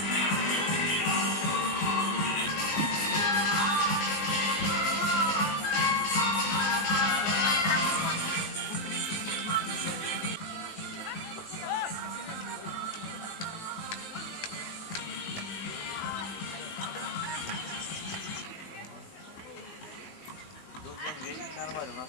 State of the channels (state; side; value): late; right; 19 ms